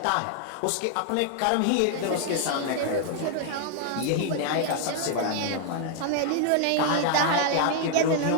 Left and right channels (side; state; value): both; different; correlation 0.00